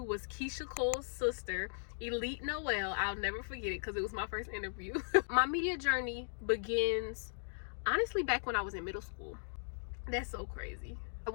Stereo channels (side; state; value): right; silent; digital silence